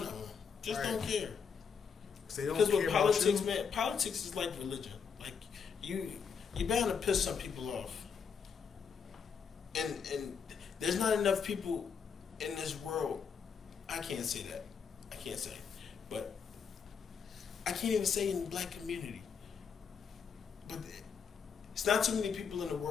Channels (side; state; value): right; quieter; 6.4 dB